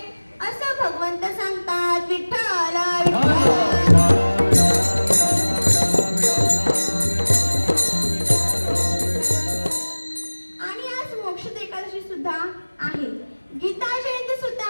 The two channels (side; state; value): both; inverted; correlation -1.00